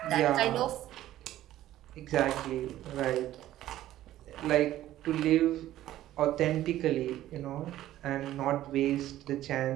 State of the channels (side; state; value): left; quieter; 13.8 dB